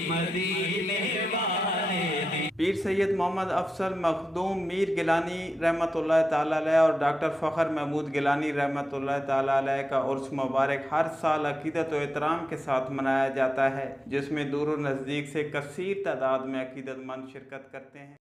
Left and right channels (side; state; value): both; normal; correlation 0.90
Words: مدینے والے دی پیر سید محمد افضل مخدوم میر گیلانی رحمۃ اللہ تعالیٰ علیہ اور ڈاکٹر فخر محمود گیلانی رحمۃ اللہ تعالیٰ علیہ کا عرس مبارک ہر سال عقیدت و احترام کے ساتھ منایا جاتا ہے، جس میں دور و نزدیک سے کثیر تعداد میں عقیدت مند شرکت کرتے ہیں۔